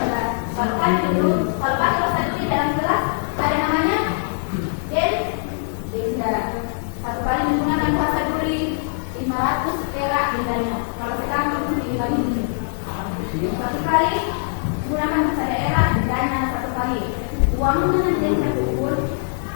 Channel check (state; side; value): silent; right; digital silence